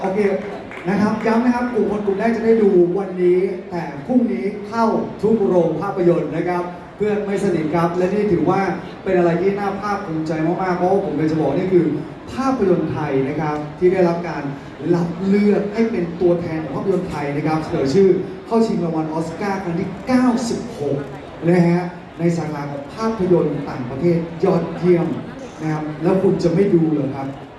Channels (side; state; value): both; identical; correlation 1.00